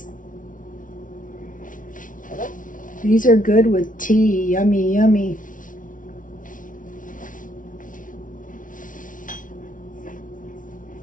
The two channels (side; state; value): right; late; 0.38 ms